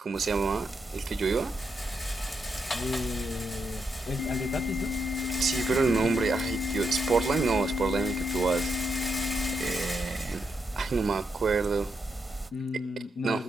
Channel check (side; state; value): both; normal; correlation 0.81